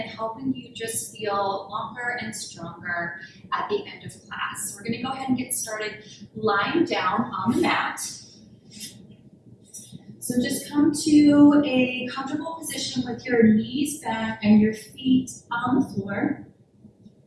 helping you just feel longer and stronger at the end of class. So we're going to go ahead and get started lying down on the mat. So just come to a comfortable position with your knees back and your feet on the floor.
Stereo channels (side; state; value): both; identical; correlation 1.00